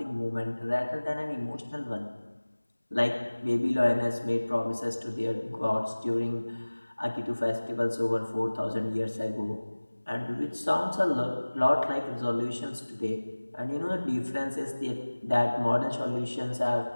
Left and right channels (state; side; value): inverted; both; correlation -1.00